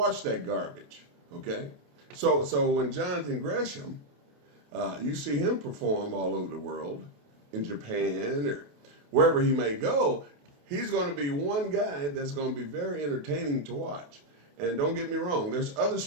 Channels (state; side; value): late; left; 28 ms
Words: that garbage, okay? So when Jonathan Gresham, you see him perform all over the world, in Japan or wherever he may go, he's going to be one guy that's going to be very entertaining to watch. And don't get me wrong, there's other